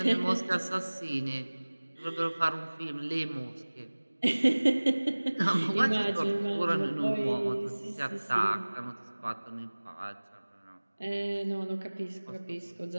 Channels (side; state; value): both; inverted; correlation -1.00